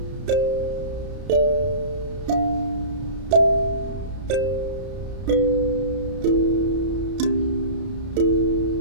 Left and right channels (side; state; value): left; late; 32 ms